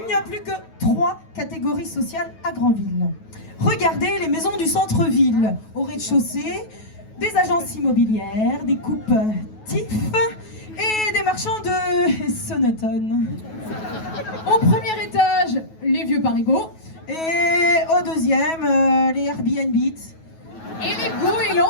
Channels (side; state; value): right; late; 9.3 ms